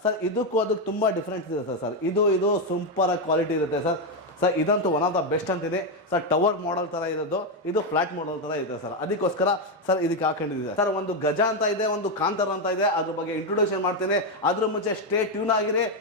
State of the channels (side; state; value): both; normal; correlation 0.06